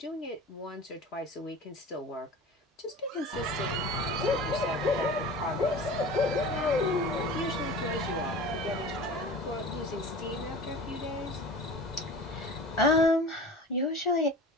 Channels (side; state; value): both; normal; correlation 0.37